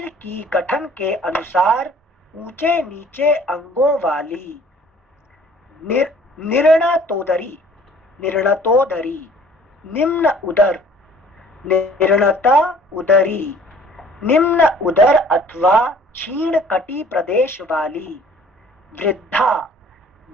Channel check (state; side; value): normal; both; correlation 0.53